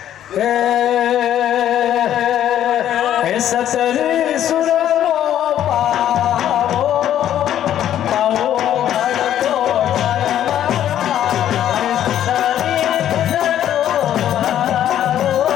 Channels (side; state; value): right; quieter; 11.1 dB